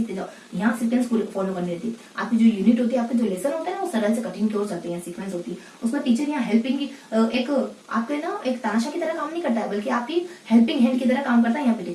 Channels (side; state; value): both; identical; correlation 1.00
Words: जाओ। यहाँ सीक्वेंस फॉलो करनी रहती है। आपकी जो यूनिट होती है, आपके जो लेसन होते हैं ना, वो सरल से कठिन की ओर चलते हैं, सीक्वेंस होती है। उसमें टीचर यहाँ हेल्पिंग की एक आपके ना एक तानाशाह की तरह काम नहीं करता है, बल्कि आपकी हेल्पिंग हैंड की तरह काम करता है यहाँ पे